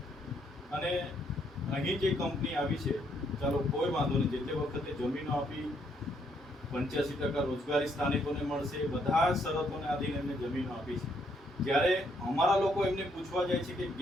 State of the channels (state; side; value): normal; both; correlation 0.72